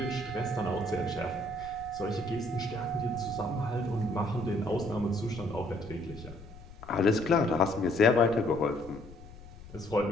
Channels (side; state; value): left; noise; rumble, 17 dB below the sound